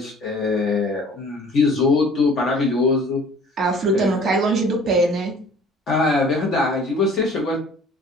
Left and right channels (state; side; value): normal; both; correlation 0.50